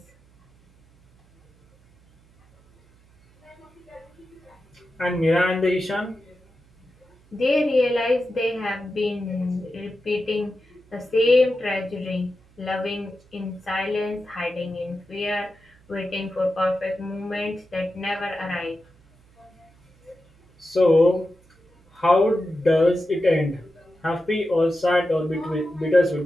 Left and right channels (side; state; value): right; noise; hum, 30 dB below the sound